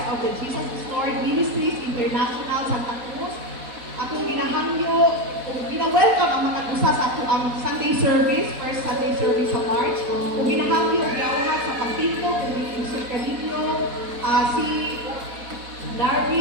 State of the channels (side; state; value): left; late; 4.1 ms